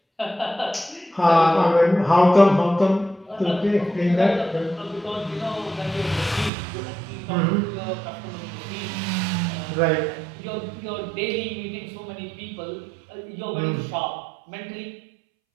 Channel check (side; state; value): left; drops out; at 6.5 s